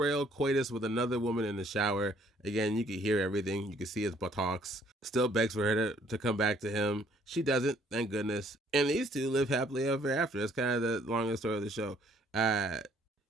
coitus with another woman in the shower. Again, you can hear everything. You can see his buttocks. Still begs for her to come back to him. She doesn't, thank goodness. And these two live happily ever after. That's kind of the longest story of the show.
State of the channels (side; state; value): both; normal; correlation 0.63